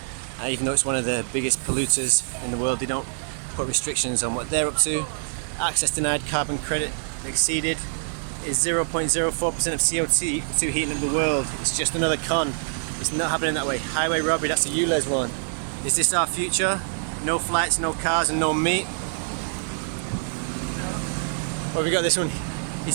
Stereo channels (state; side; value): silent; left; digital silence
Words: even though it's one of the biggest polluters in the world. They don't put restrictions on what they're up to. Access denied, carbon credit exceeded is 0.04% of CO2 heating up the world. It's just another con. It's not happening that way. Highway robbery, that's the ULEZ one. Is this our future? No flights, no cars and no meat. Well, we got this one.